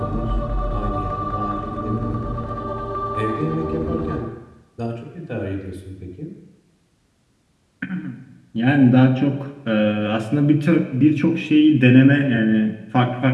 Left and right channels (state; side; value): identical; both; correlation 1.00